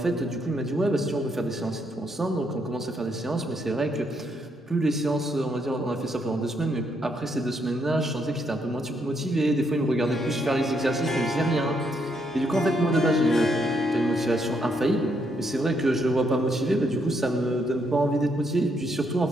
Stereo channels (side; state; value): both; normal; correlation 0.75